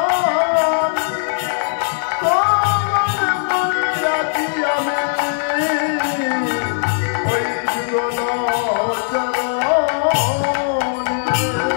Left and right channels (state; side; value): silent; right; digital silence